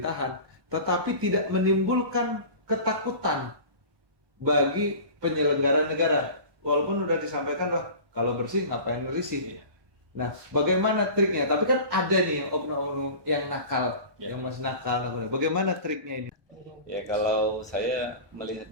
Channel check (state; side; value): late; left; 1.2 ms